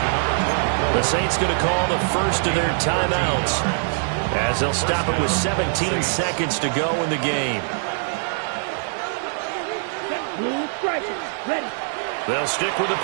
The Saints going to call the first of their timeouts, as they'll stop it with 17 seconds to go in the game. Blue striker, ready. They'll stick with the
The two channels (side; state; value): left; silent; 64 dB below the other